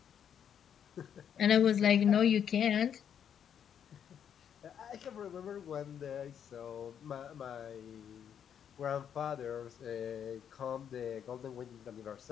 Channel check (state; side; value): quieter; right; 8.6 dB